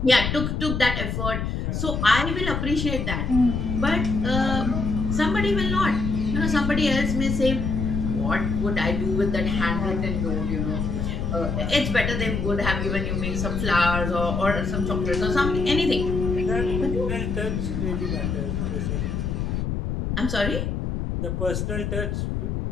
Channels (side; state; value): left; noise; rumble, 2 dB below the sound